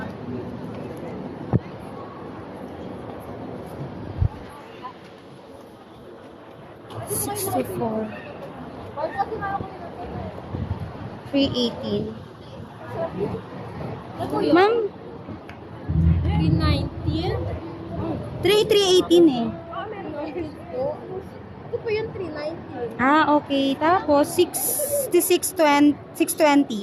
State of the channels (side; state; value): both; identical; correlation 1.00